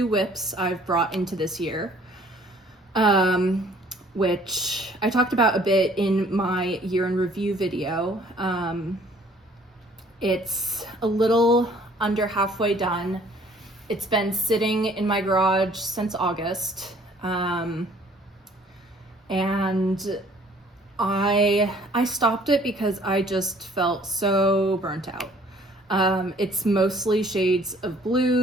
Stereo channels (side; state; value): both; normal; correlation 0.57